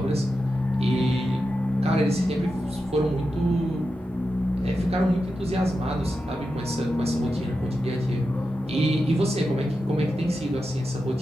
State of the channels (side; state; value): both; normal; correlation 0.90